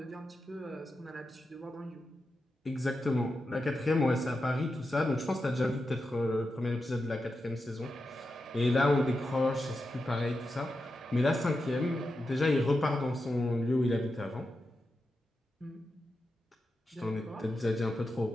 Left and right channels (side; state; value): both; normal; correlation 0.89